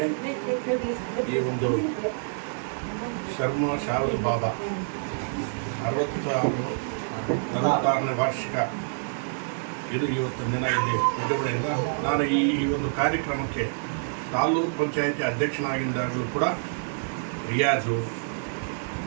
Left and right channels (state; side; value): silent; left; digital silence